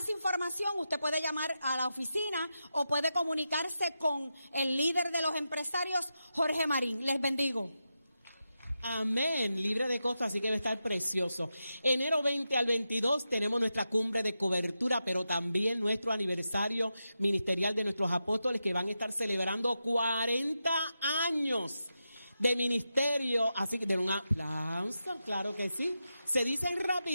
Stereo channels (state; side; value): inverted; both; correlation -0.89